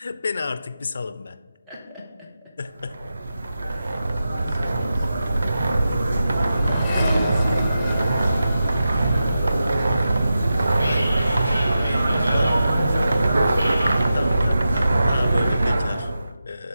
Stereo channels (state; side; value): inverted; both; correlation -0.90